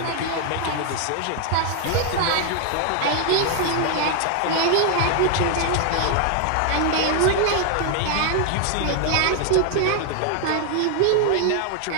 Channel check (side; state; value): both; different; correlation 0.00